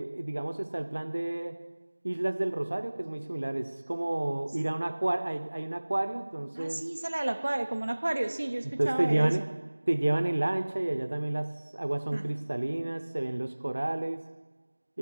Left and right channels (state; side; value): inverted; both; correlation -1.00